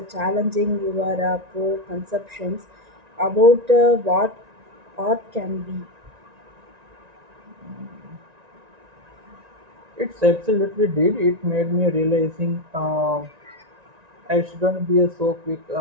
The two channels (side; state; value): left; late; 1.9 ms